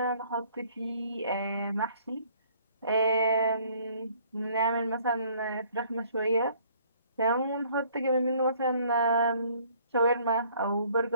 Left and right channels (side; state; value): both; inverted; correlation -0.59